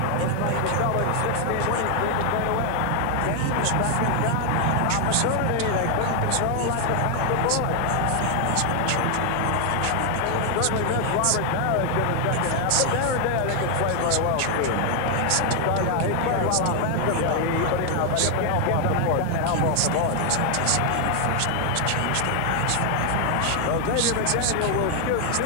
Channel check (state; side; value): different; both; correlation 0.00